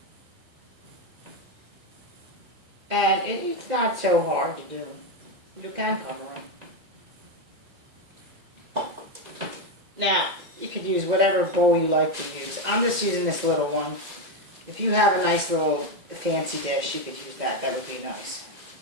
And it's not so hard to do. You can cover them. Now, you could use whatever bowl you like to use. I'm just using this little one. If you have a nice little fancy dish, you could use that. That would be nice.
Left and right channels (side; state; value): left; late; 2.1 ms